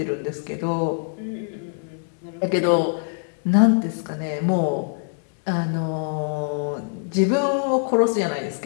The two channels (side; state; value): right; silent; digital silence